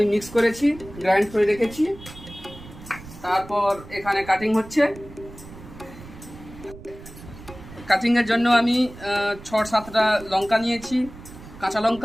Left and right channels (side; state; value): right; noise; rumble, 17 dB below the sound